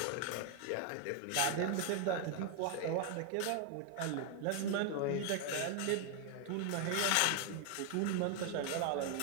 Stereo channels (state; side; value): different; both; correlation 0.00